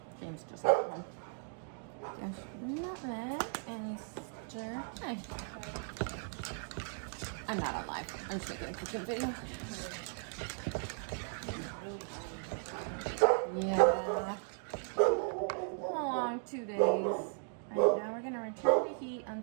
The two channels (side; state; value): left; silent; 53 dB below the other